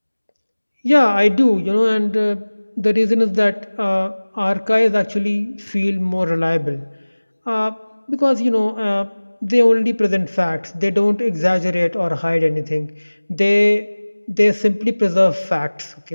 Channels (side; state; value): both; inverted; correlation -1.00